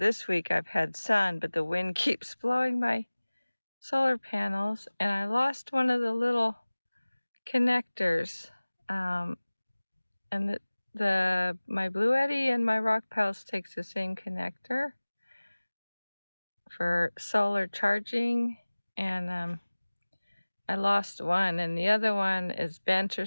week I've had sun, but the wind keeps blowing my solar panels, and I lost one of the little connectors. And my Blue Eddy and my Rock Pals takes the same connector for solar charging, and I lost one, and the other one is bent or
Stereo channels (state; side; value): inverted; both; correlation -1.00